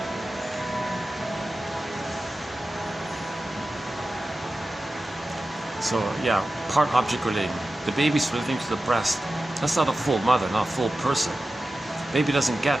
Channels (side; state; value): both; normal; correlation 0.94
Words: So yeah, part object relating. The baby's relating to the breast. That's not a full mother, not a full person. Baby doesn't get